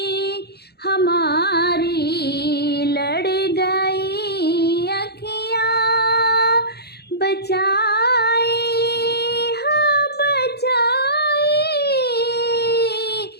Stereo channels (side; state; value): right; late; 0.47 ms